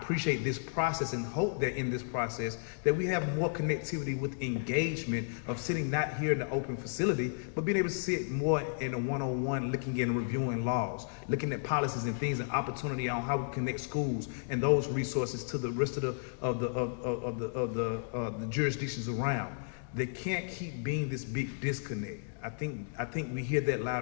this process and hope that in this process that we have more connectivity with engagement of sitting not here in the open facility, but being able to sit more in a one-on-one, looking and reviewing laws, looking at policies and things and opportunity on how we connect schools and those resources to the rest of the jurisdictions around. They can't keep being this big disconnect. I think we hear that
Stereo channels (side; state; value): right; silent; digital silence